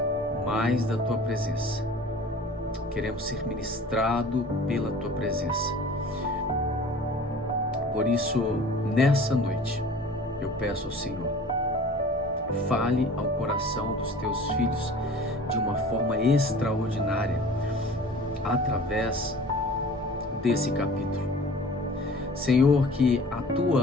mais da Tua presença. Queremos ser ministrado pela Tua presença. Por isso, nessa noite, eu peço ao Senhor, fale ao coração dos Teus filhos de uma forma extraordinária, através desse capítulo. Senhor, que a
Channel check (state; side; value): normal; both; correlation 0.44